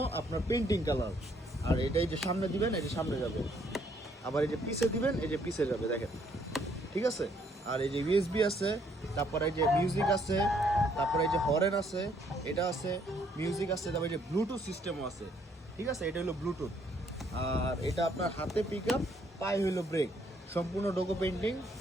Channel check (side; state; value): both; normal; correlation 0.67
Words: আপনার পেন্টিং কালার। আর এটাই যে সামনে দিবেন, এই যে সামনে যাবে, আবার এই যে পিছে দিবেন, এই যে পিছে যাবে, দেখেন ঠিক আছে। আর এই যে ইউএসবি আছে, তারপরে এই যে মিউজিক আছে, তারপরে এই যে হরেন আছে, এটা আছে, মিউজিক আছে, তারপরে এই যে ব্লুটুথ সিস্টেমও আছে, ঠিক আছে। এটা হলো ব্লুটুথ। আর এটা আপনার হাতে পিক আপ, পায়ে হইলো ব্রেক, সম্পূর্ণ ডোকো পেন্টিং।